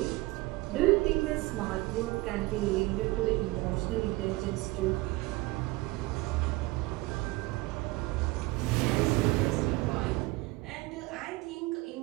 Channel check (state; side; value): quieter; left; 21.3 dB